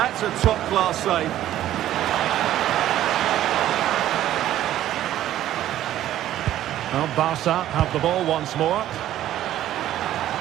a top-class save. Well, Barca have the ball once more.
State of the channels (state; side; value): quieter; left; 12.7 dB